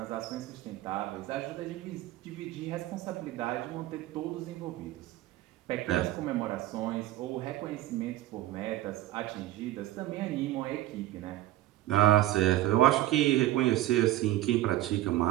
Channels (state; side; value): quieter; left; 15.2 dB